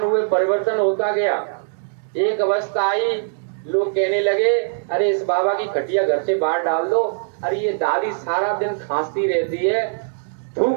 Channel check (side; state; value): left; silent; digital silence